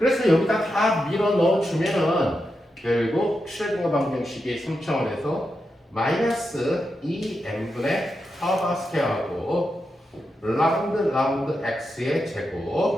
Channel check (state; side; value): normal; both; correlation 0.87